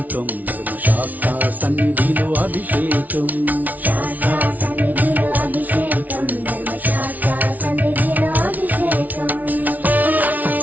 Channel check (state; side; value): late; left; 0.076 ms